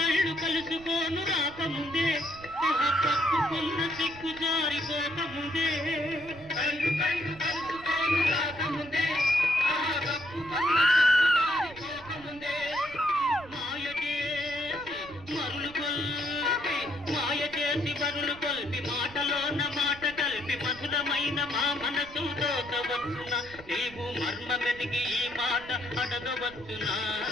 కలుసుకోను రాకముందే పక్కుకున్న సిక్కు జారిపోకముందే కళ్ళు కళ్ళు కలుసుకోను రాకముందే కప్పుకున్న జారిపోకముందే మాయ చేసి బరులు కొల్పి మాటలోన మాట కలిపి మధురమైన మా మనసు దోచవచ్చునా నీవు మర్మ వెతికి ఈ మాట అడగవచ్చునా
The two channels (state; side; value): noise; right; rumble, 19 dB below the sound